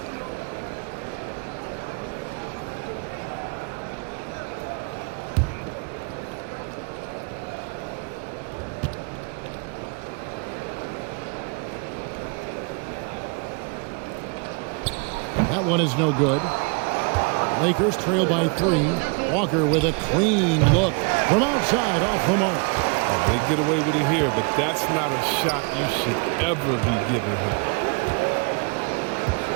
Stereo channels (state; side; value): quieter; left; 34.4 dB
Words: That one is no good. Lakers trail by 3. Walker with a clean look from outside off the mark. They get away with it here, but that's not a shot you should ever be giving him.